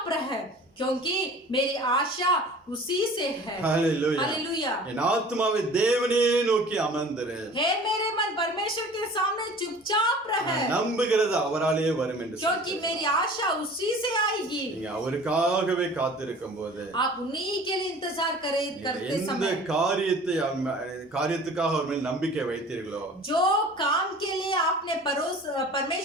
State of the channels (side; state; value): both; normal; correlation 0.44